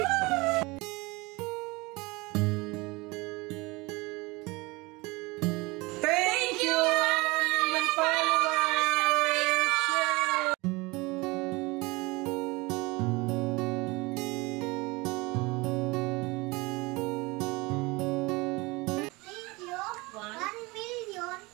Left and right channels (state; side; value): quieter; left; 24.0 dB